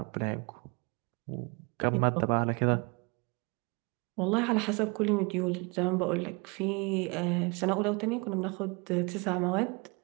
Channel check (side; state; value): left; quieter; 29.6 dB